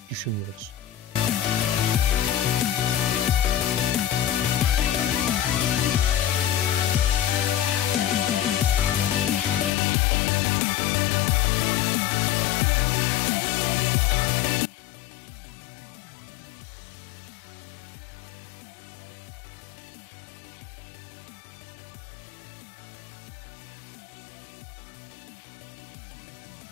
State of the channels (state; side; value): drops out; right; at 9.7 s